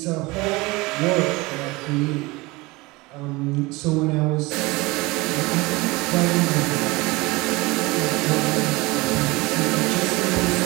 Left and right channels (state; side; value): quieter; left; 23.0 dB